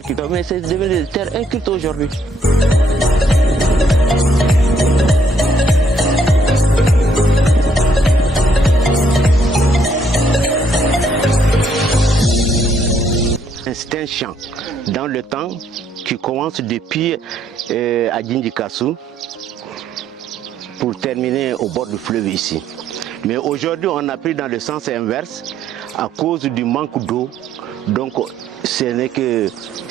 cultivées, mais c'est devenu des terres incultes aujourd'hui. C'est un champ dans le temps qui commence depuis à Djindikassou pour terminer au bord du fleuve ici. Mais aujourd'hui, on a pris dans le sens inverse à cause du manque d'eau. Donc, ce n'est que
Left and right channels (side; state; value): both; normal; correlation 0.69